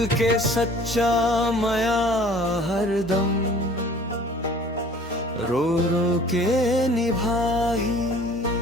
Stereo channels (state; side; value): normal; both; correlation 0.49